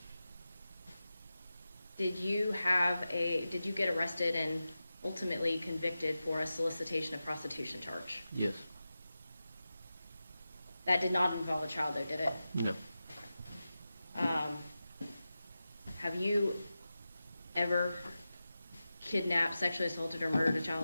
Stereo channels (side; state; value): both; inverted; correlation -0.93